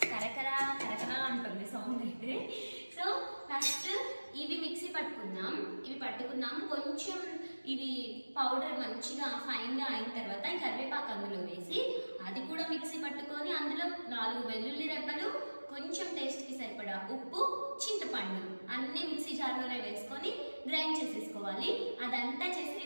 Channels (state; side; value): inverted; both; correlation -1.00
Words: కరకరా కరకరా అంటుంది సౌండ్ అయితే. సో ఫస్ట్ ఇవి మిక్సీ పట్టుకున్నాం. కొంచెం ఇవి పౌడర్ మంచిగా ఫైన్గా అయిన తర్వాత ఈ కరివేపాకు అందులో వేసి అది కూడా మిక్సీ పట్టుకొని అందులో 4 వెల్లుల్లి రెబ్బలు, కొంచెం టేస్ట్కి సరిపడా ఉప్పు, చింతపండు అన్ని మిక్సీ జార్లోనే వేసుకొని గ్రైండ్ చేసేసుకోవాలి. అదంతా చేసి